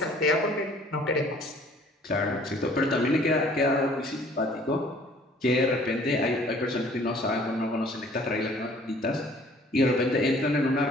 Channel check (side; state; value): both; normal; correlation 0.55